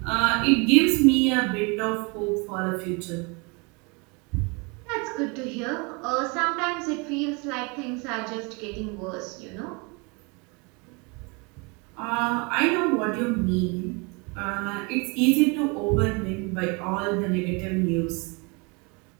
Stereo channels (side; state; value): left; quieter; 30.3 dB